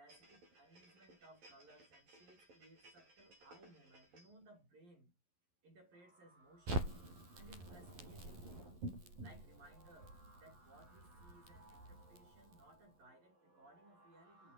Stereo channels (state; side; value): late; left; 11 ms